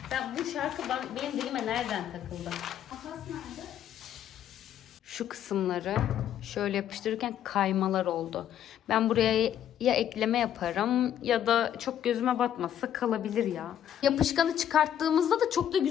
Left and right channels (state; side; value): quieter; right; 10.3 dB